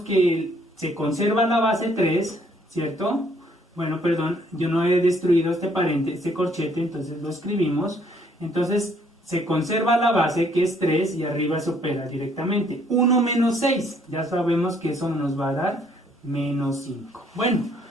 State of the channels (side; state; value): both; normal; correlation 0.65